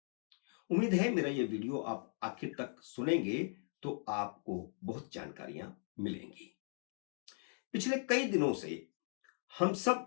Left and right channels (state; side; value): silent; right; 52 dB below the other